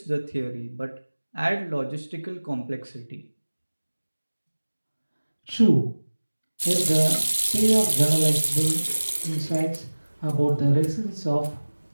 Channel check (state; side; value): inverted; both; correlation -1.00